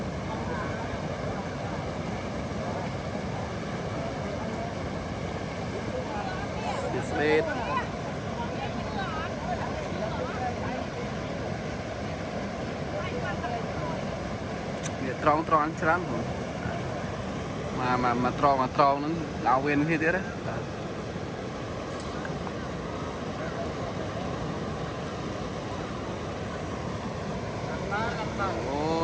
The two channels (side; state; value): both; identical; correlation 1.00